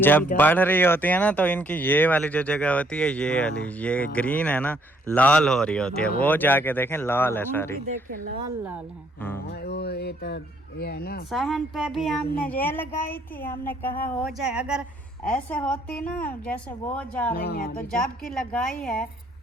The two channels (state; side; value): normal; both; correlation 0.67